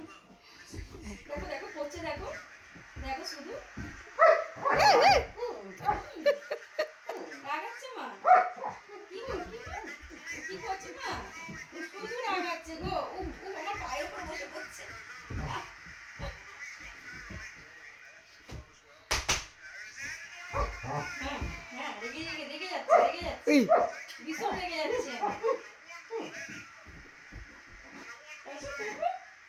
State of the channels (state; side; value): identical; both; correlation 1.00